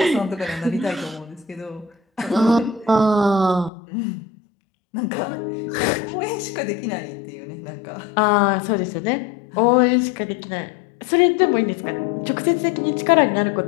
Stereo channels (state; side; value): drops out; right; at 3.7 s